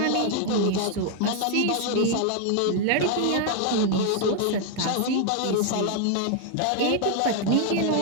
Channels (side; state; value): both; different; correlation 0.00